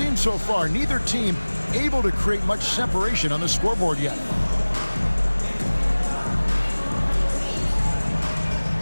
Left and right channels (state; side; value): inverted; both; correlation -1.00